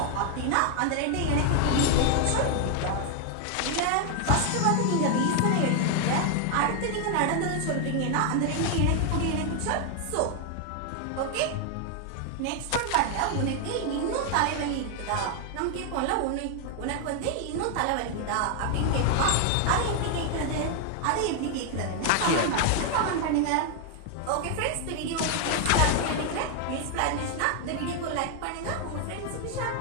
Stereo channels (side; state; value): both; different; correlation 0.00